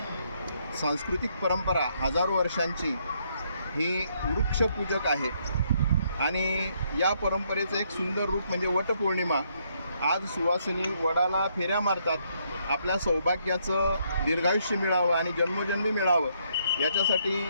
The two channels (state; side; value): inverted; both; correlation -0.72